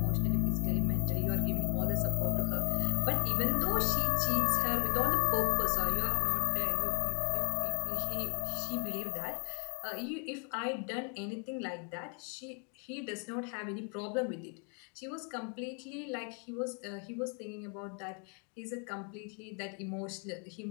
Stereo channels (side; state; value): right; quieter; 37.4 dB